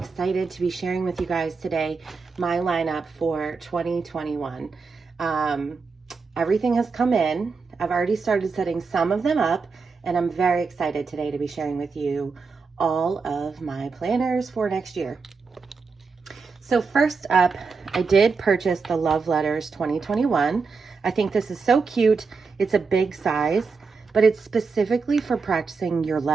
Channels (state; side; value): quieter; left; 4.8 dB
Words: to be sharing with you guys today my lineup for 2021. Everything has come in. I've already started setting some of them up, and I'm very excited today to be sharing with you all of my planners for next year. So first up, I did purchase the Love Letters 2021. I think this is so cute. It's a big size, but it's specifically for practicing your